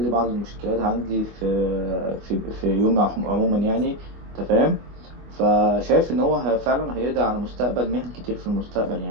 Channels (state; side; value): late; left; 25 ms